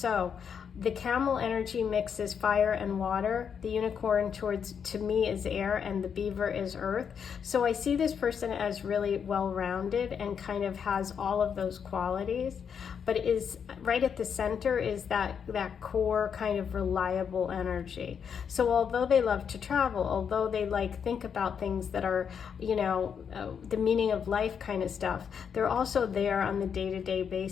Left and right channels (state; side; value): quieter; right; 7.2 dB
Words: the camel energy mixes fire and water. The unicorn to me is air, and the beaver is earth. So I see this person as really well-rounded and kind of has all of those qualities, but is right at the center is that core kind of reliable energy. So although they love to travel, although they think about things that are, you know, the meaning of life kind of stuff, they're also there on the day-to-day